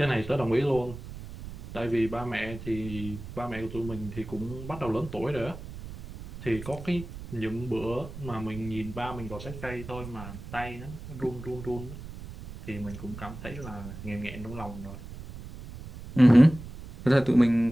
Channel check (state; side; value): noise; right; rumble, 12 dB below the sound